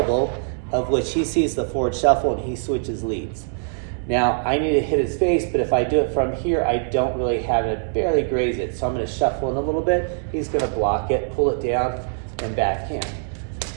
of which he sees the forward shuffle and he switches leads. Now, I need to hit his face, but if I do it from here, I don't really have it, barely graze it, so I'm going to shuffle in a little bit. He's going to block it, pull it down, and backhand.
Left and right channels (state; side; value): silent; left; digital silence